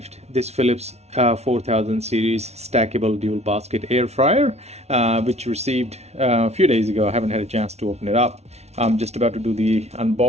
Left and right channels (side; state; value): left; late; 0.31 ms